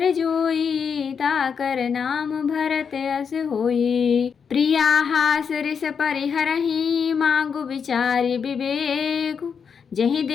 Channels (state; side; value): quieter; right; 6.5 dB